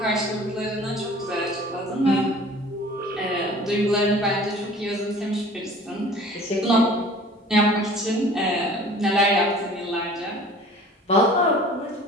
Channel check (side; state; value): both; normal; correlation 0.47